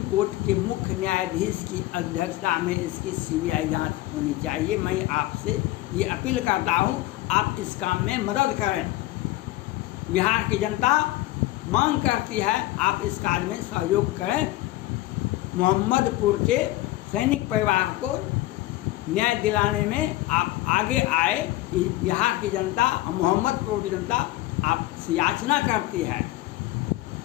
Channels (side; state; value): right; quieter; 17.2 dB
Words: कोर्ट के मुख्य न्यायाधीश की अध्यक्षता में इसकी सीबीआई जांच होनी चाहिए। मैं आपसे ये अपील करता हूँ, आप इस काम में मदद करें। बिहार की जनता मांग करती है, आप इस कार्य में सहयोग करें। मोहम्मदपुर के सैनिक परिवार को न्याय दिलाने में आप आगे आए। बिहार की जनता और मोहम्मदपुर की जनता आपसे याचना करती है,